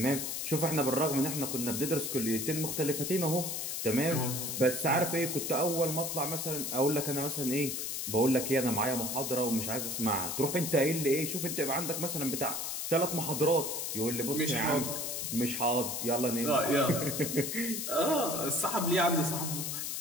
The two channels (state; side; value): noise; left; hiss, 3 dB below the sound